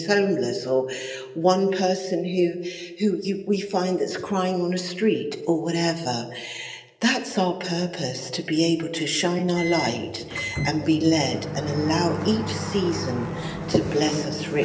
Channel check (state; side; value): identical; both; correlation 1.00